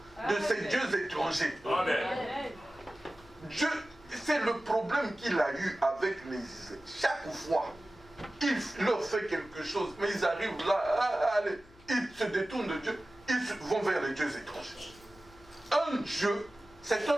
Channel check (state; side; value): noise; left; hum, 26 dB below the sound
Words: de ces dieux étrangers. Amen. Dieu, c'est le problème qu'il a eu avec les Israélites. Chaque fois, il leur fait quelque chose, mais ils arrivent là, allez, ils se détournent de Dieu, ils vont vers les dieux étrangers. Un Dieu, c'est